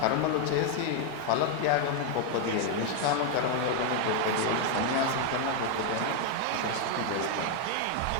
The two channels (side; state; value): both; different; correlation 0.01